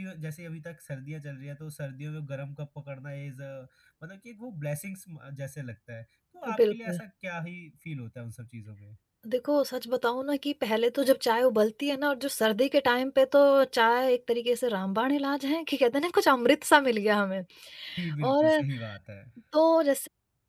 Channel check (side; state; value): both; identical; correlation 1.00